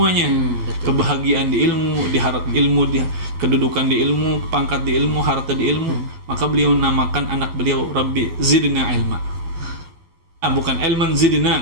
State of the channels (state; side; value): late; left; 12 ms